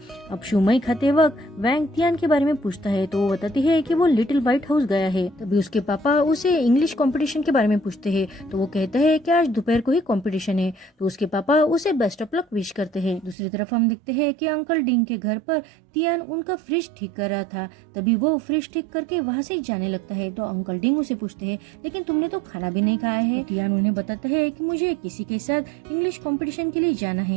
अब शुमई खाते वक्त वैंग तियान के बारे में पूछता है तो वो बताती है कि वो लिटिल व्हाइट हाउस गया है। तभी उसके पापा उसे इंग्लिश कंपटीशन के बारे में पूछते हैं तो वो कहता है कि आज दोपहर को ही कंपटीशन है। तो उसके पापा उसे बेस्ट ऑफ लक विश करते हैं। दूसरी तरफ हम देखते हैं कि अंकल डिंग के घर पर तियान उनका फ्रिज ठीक कर रहा था। तभी वो फ्रिज ठीक करके वहाँ से जाने लगता है। तो अंकल डिंग उसे पूछते हैं लेकिन तुमने तो खाना भी नहीं खाया है। तो तियान उन्हें बताता है कि मुझे किसी के साथ इंग्लिश कंपटीशन के लिए जाना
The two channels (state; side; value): drops out; left; at 13.4 s